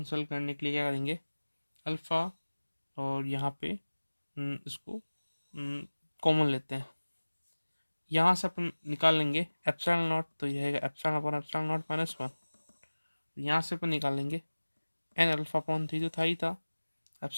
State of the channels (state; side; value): inverted; both; correlation -1.00